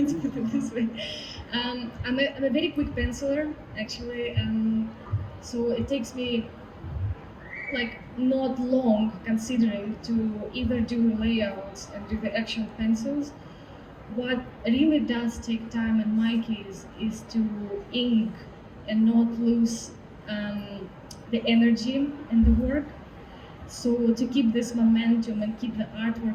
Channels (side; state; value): both; identical; correlation 1.00